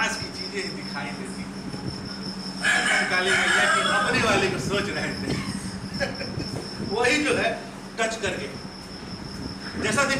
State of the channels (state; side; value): identical; both; correlation 1.00